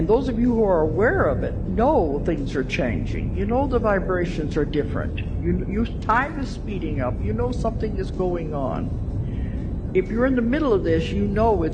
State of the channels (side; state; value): both; identical; correlation 1.00